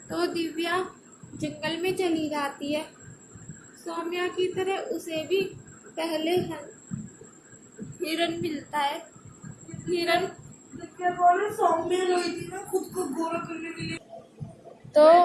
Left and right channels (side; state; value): both; identical; correlation 1.00